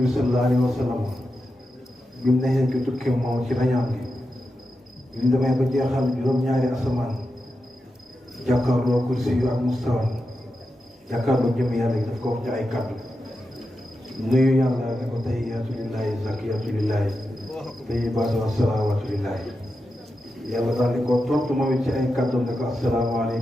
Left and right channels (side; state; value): both; normal; correlation 0.89